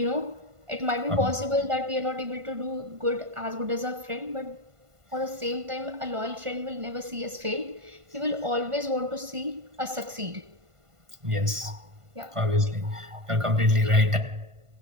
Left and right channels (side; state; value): left; late; 1.5 ms